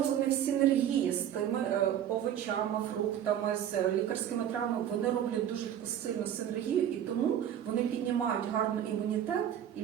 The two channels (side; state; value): left; quieter; 10.1 dB